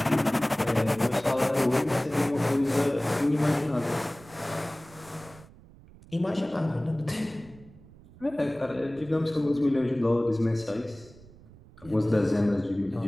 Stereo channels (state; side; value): noise; right; rumble, 22 dB below the sound